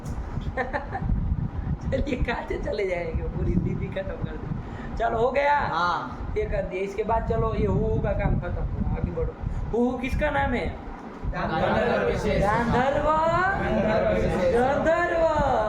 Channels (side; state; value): both; identical; correlation 1.00